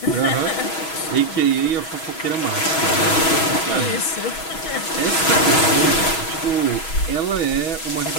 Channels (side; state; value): right; late; 6.2 ms